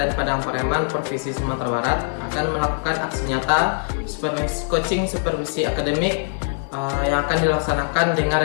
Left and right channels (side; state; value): right; silent; 61 dB below the other